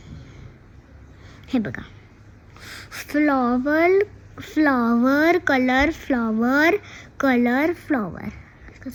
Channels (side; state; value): both; identical; correlation 1.00